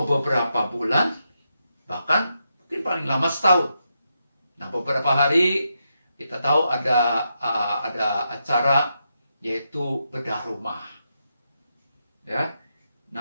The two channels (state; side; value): inverted; both; correlation -0.84